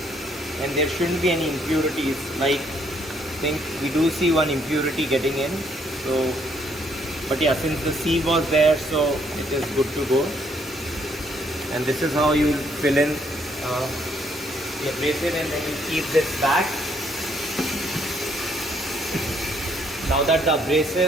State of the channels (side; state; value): both; normal; correlation 0.69